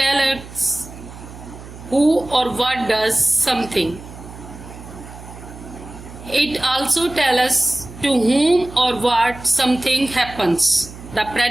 us who or what does something. It also tells us to whom or what something happens. The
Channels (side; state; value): right; noise; hum, 15 dB below the sound